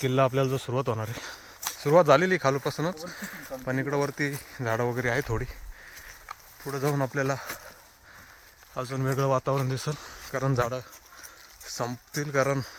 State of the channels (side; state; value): both; identical; correlation 1.00